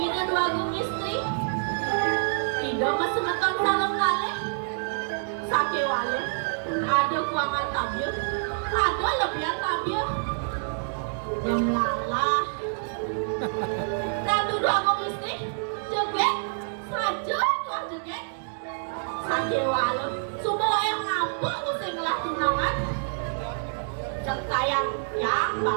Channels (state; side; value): silent; left; digital silence